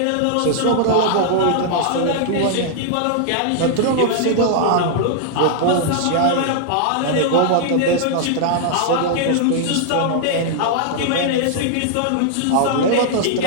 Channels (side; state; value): both; different; correlation -0.01